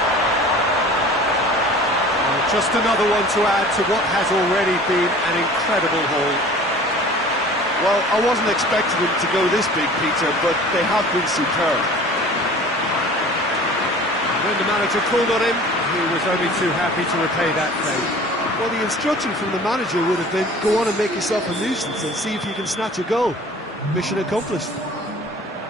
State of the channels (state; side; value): normal; both; correlation 0.44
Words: Well, just another one to add to what has already been an incredible haul. Well, I wasn't expecting them to go this big, Peter, but they have been superb. When the manager called on him, he was only too happy to repay that favour. Well, the instruction from the manager would have been, go on and make yourself a nuisance and see if you can snatch a goal. Mission accomplished.